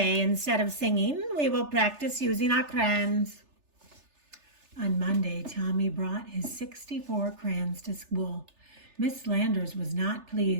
instead of singing, we will practice using our crayons." On Monday, Tomie brought his 64 crayons to school. Miss Landers was not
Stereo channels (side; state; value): left; late; 3.3 ms